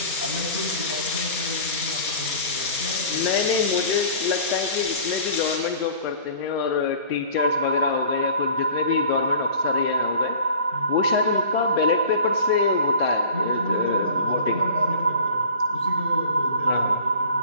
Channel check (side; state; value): both; inverted; correlation -0.43